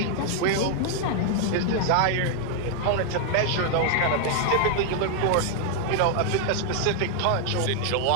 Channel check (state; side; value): different; both; correlation 0.00